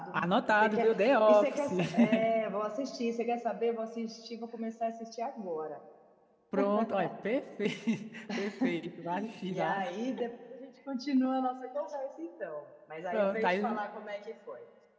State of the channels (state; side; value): identical; both; correlation 1.00